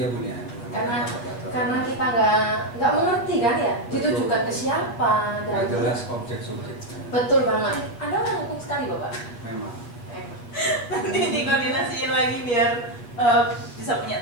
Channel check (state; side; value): late; right; 8.6 ms